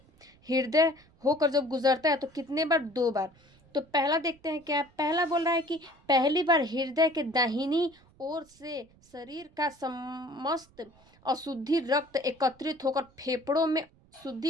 हृदय होकर जब गुजरता है तो कितने बार, 2 बार। तो पहला देखते हैं क्या है। पहला बोल रहा है कि पहली बार हृदय के दाहिनी ओर से शरीर का समस्त अशुद्धि रक्त एकत्रित होकर फेफड़ों में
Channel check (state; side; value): noise; right; rumble, 29 dB below the sound